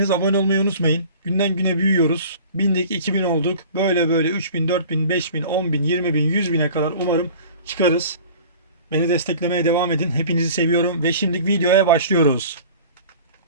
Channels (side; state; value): both; inverted; correlation -0.43